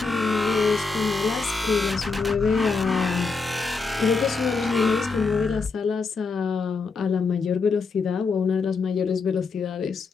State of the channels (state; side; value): quieter; right; 4.5 dB